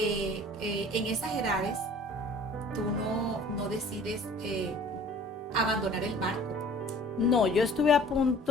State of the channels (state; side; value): normal; both; correlation 0.48